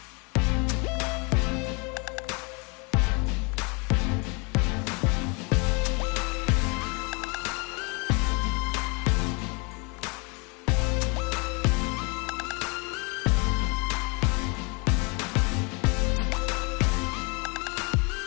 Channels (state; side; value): quieter; right; 31.3 dB